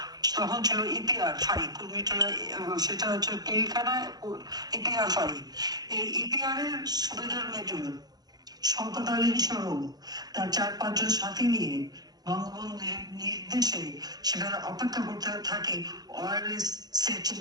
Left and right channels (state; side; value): late; left; 0.19 ms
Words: তখন ছিল ইপিআর ফাঁড়ি, কুর্মিটোলা, সেটা হচ্ছে পিলখানায় ইপিআর ফাঁড়ি। এই ইপিআর এর সুবেদার মেজর শওকত আলী সহ তার 4-5 জন সাথী নিয়ে বঙ্গবন্ধুর নির্দেশে সেখানে অপেক্ষা করতে থাকে ওয়্যারলেস সেট